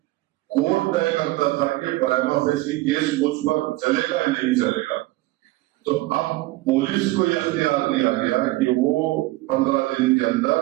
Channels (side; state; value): left; quieter; 19.1 dB